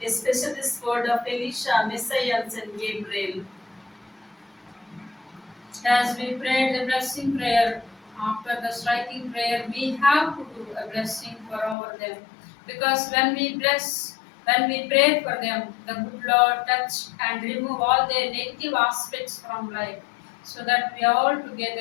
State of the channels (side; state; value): right; drops out; at 11.8 s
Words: especially the sword of Elisha, Messiah, and Saint Gabriel. As we prayed the blessing prayer, after the striking prayer, we have to do a blessing for over them. Because when we pray for them, the good Lord touch and remove all their negative aspects from life, so that we all